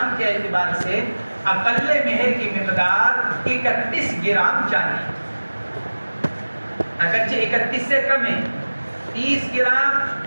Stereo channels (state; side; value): inverted; both; correlation -1.00